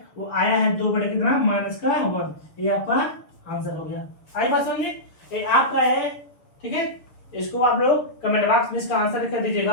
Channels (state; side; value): late; right; 6.7 ms